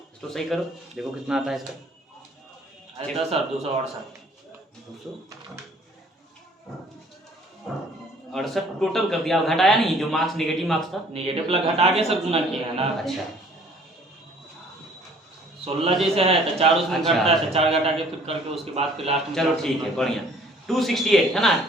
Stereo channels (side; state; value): both; normal; correlation 0.56